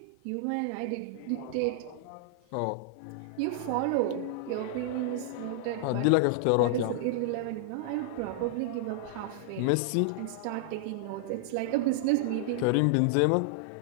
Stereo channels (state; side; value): different; both; correlation -0.01